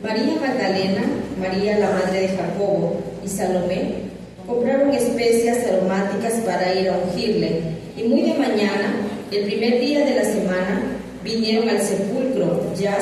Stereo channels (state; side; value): identical; both; correlation 1.00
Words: María Magdalena, María la madre de Jacobo y Salomé compraron especias aromáticas para ir a ungirle, y muy de mañana, el primer día de la semana, vinieron al sepulcro, ya